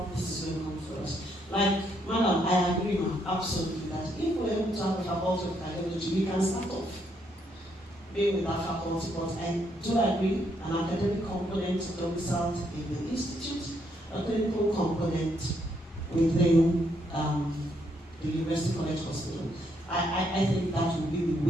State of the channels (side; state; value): both; normal; correlation 0.74